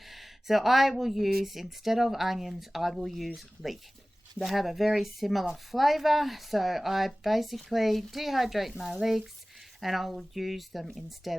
so I will use, instead of onions, I will use leek. They have a very similar flavor, so I basically dehydrate my leeks and I will use them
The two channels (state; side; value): normal; both; correlation 0.98